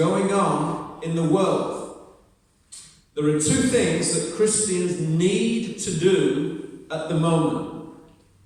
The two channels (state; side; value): identical; both; correlation 1.00